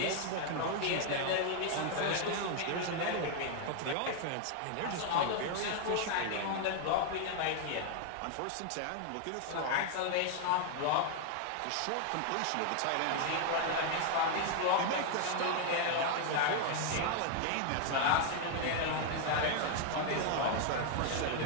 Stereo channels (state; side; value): different; both; correlation 0.00